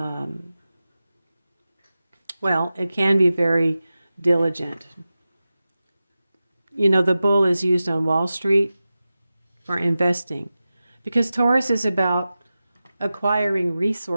well, it can be very diligent. You know, the bull is used on Wall Street for investing, because Taurus is about acquiring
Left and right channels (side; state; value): both; inverted; correlation -0.94